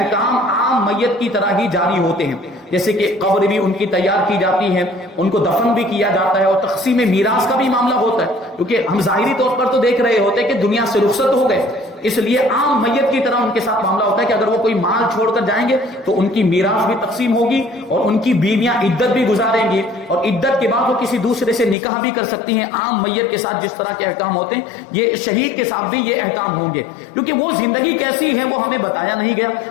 عام میت کی طرح ہی جاری ہوتے ہیں, جیسے کہ قبر بھی ان کی تیار کی جاتی ہے, ان کو دفن بھی کیا جاتا ہے اور تقسیم میراث کا بھی معاملہ ہوتا ہے, کیونکہ ہم ظاہری طور پر تو دیکھ رہے ہوتے ہیں کہ دنیا سے رخصت ہو گئے, اس لیے عام میت کی طرح ان کے ساتھ معاملہ ہوتا ہے کہ اگر وہ کوئی مال چھوڑ کر جائیں گے تو ان کی میراث بھی تقسیم ہوگی اور ان کی بیویاں عدت بھی گزاریں گی اور عدت کے بعد وہ کسی دوسرے سے نکاح بھی کر سکتی ہیں. عام میت کے ساتھ جس طرح کے احکام ہوتے ہیں یہ شہید کے ساتھ بھی یہ احکام ہوں گے, کیونکہ وہ زندگی کیسی ہے وہ ہمیں بتایا نہیں گیا.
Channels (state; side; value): drops out; right; at 21.8 s